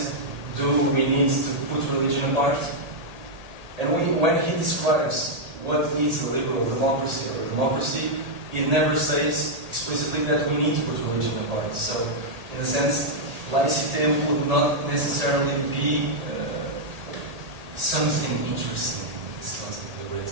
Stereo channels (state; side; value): late; left; 1.8 ms